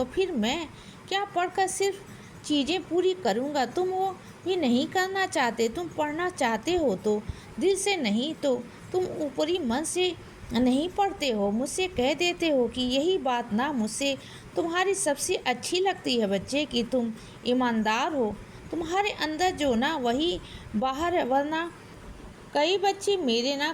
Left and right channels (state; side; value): identical; both; correlation 1.00